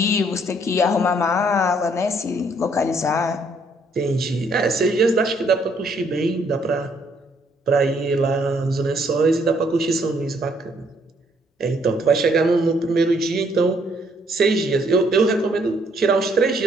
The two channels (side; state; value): both; normal; correlation 0.67